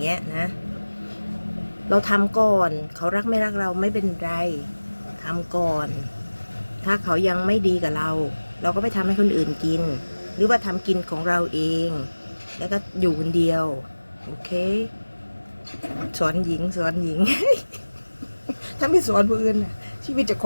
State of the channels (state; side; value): inverted; both; correlation -1.00